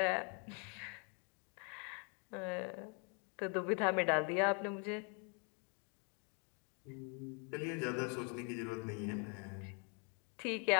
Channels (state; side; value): quieter; right; 37.8 dB